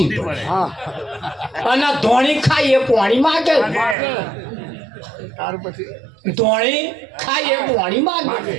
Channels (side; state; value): left; drops out; at 4.0 s